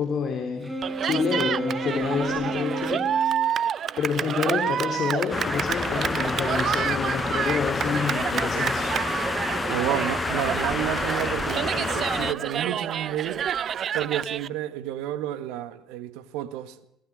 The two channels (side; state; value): both; normal; correlation 0.66